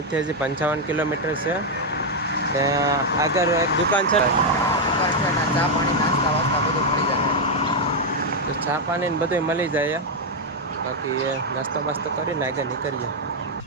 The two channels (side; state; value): both; normal; correlation 0.02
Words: હજી 55 કિલોમીટર છે. આગળ એક દુકાન છે, ચા પાણી નાસ્તા વાસ્તા બધું મળી જશે. તો ચા પાણી ને બધું મળી જાય. બાકી નાસ્તો બાસ્તો કરીને આગળ નીકળીએ.